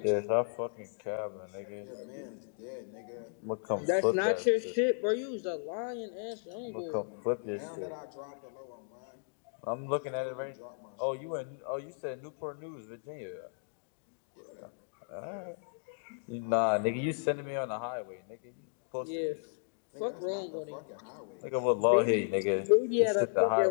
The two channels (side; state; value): right; silent; digital silence